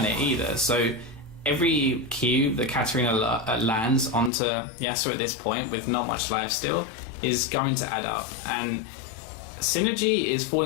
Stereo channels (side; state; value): right; drops out; at 4.3 s